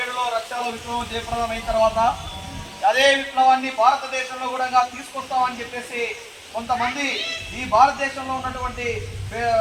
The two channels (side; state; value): both; identical; correlation 1.00